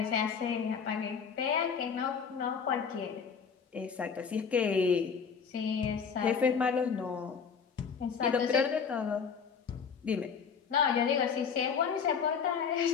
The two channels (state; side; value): quieter; right; 6.3 dB